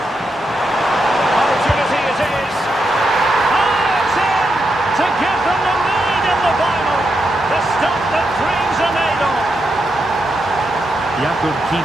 Opportunity it is. Oh, it's in! To give them the lead in the final. The stuff that dreams are made of. Jakub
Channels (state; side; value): normal; both; correlation 0.84